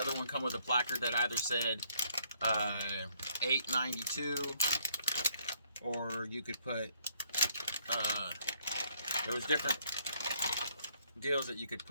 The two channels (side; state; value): both; inverted; correlation -0.68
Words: one come with a placard that either said 892, or you could put there was different deals that you could